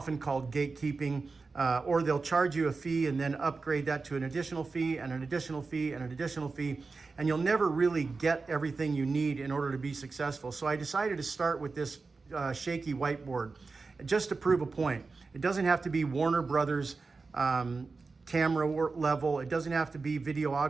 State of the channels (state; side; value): quieter; left; 4.2 dB